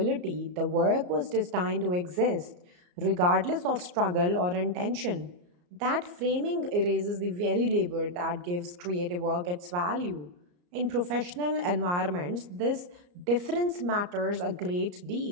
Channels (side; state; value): left; late; 34 ms